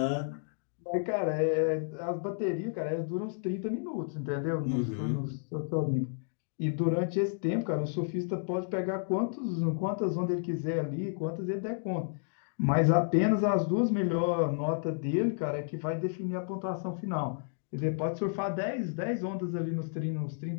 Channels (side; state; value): right; silent; digital silence